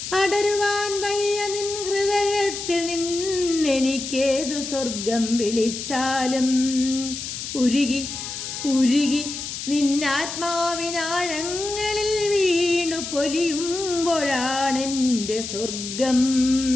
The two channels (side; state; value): left; noise; hiss, 7 dB below the sound